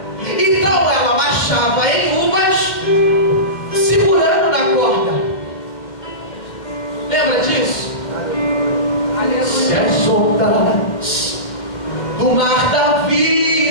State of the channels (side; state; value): right; late; 2.1 ms